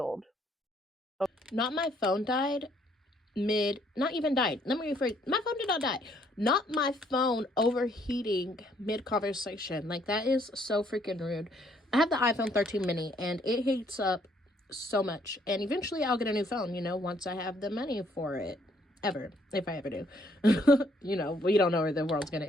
Not my phone died not even died. Let me rephrase. My phone did not die. Not my phone overheating mid conversation. Like, that is so freaking rude. I have the iPhone 13 mini and it heats up so much. And eventually I'll get a new phone, you know, once I have the money for it. Ever. If I ever do. You know, we don't know where the world's going to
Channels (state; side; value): normal; both; correlation 0.67